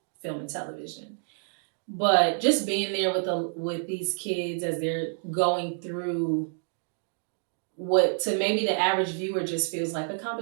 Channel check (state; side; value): silent; left; 59 dB below the other